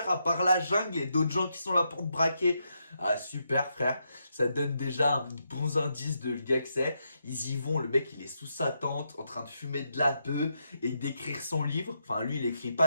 à part la jungle et d'autres gens qui sont là pour te braquer. Ah, super, frère. Ça donne déjà un bon indice de le gars que c'est. Ils y vont, le mec, il est sous sa tente, en train de fumer de la bœuf et d'écrire son livre. Enfin, lui, il écrit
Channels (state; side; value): inverted; both; correlation -0.81